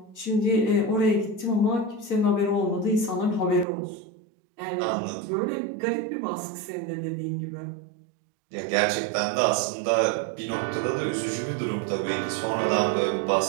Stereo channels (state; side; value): drops out; left; at 3.7 s